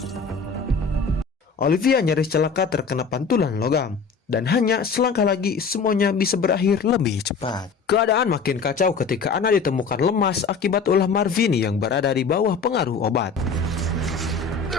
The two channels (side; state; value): right; quieter; 5.3 dB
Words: Olivia nyaris celaka terkena pantulan logam, dan hanya selangkah lagi semuanya bisa berakhir lebih cepat. Keadaan makin kacau ketika Anna ditemukan lemas akibat ulah Marvin yang berada di bawah pengaruh obat.